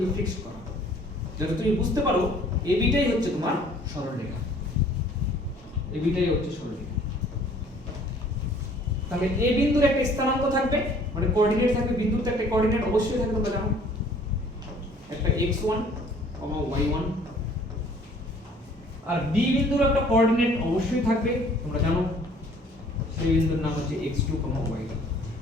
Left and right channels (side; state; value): both; normal; correlation 0.55